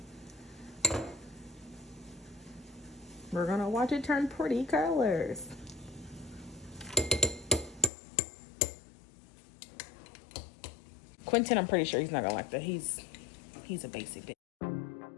We're gonna watch it turn pretty colors. Quentin, I'm pretty sure he's not gonna like that. He's a basic bitch.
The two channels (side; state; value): right; drops out; at 7.9 s